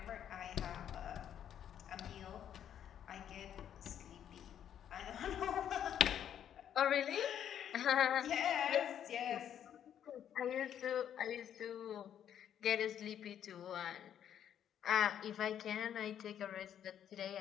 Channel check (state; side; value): quieter; right; 9.7 dB